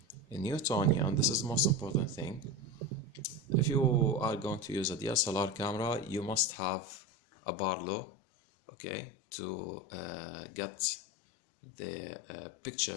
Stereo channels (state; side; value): drops out; right; at 6.6 s